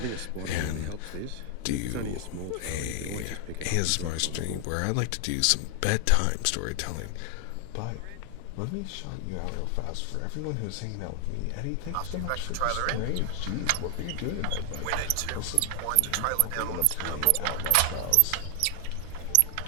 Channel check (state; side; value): different; both; correlation 0.00